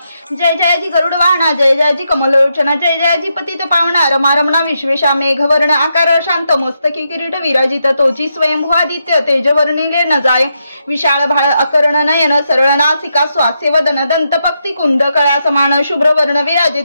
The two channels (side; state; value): both; inverted; correlation -0.82